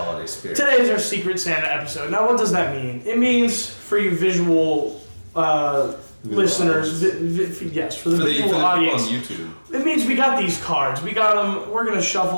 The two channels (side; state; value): both; inverted; correlation -1.00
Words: spirit. Today is our Secret Santa episode. Now, what does that mean? It means for you visual listeners, yes, for the visual audience. On YouTube. It means we got these cards. We got them. We're going to